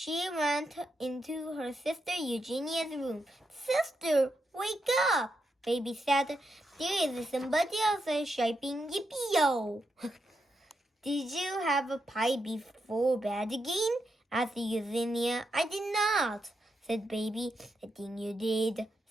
went into her sister Eugenia's room. Sister, wake up! Baby said, there is somebody else shouting yippee-yo. Did you have a pie before bed again? Asked Eugenia. I did not, said Baby. I think you did,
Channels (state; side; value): normal; both; correlation 0.84